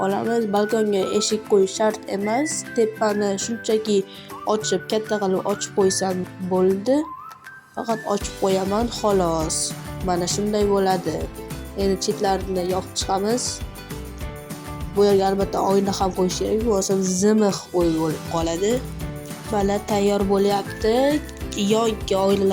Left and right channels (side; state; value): both; identical; correlation 1.00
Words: olamiz. Balkonga eshik qo'yish shart emas. Tepani shunchaki ochib, katta qilib ochib qo'ysam bo'ldi. Faqat ochib qo'yaman xolos. Mana shunday bo'ladi. Endi chetlarini yopib chiqamiz. Bu yerga albatta oyna ham qo'yish kerak, bo'lmasa zimiq o'y bo'lib qoladi. Mana tayyor bo'lyapti. Yonga